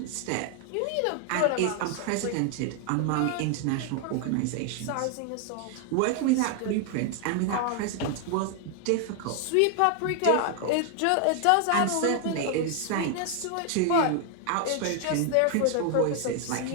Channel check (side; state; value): both; different; correlation 0.00